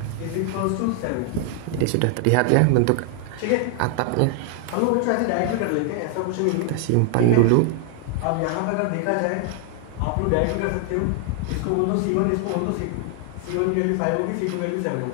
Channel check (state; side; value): different; both; correlation 0.00